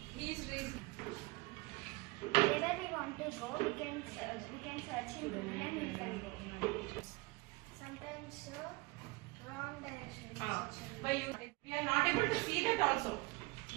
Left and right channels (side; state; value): left; quieter; 24.5 dB